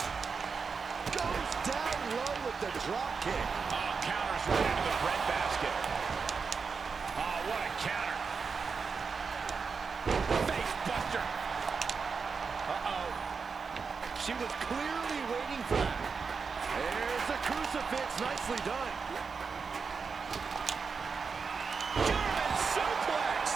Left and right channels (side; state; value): left; quieter; 5.3 dB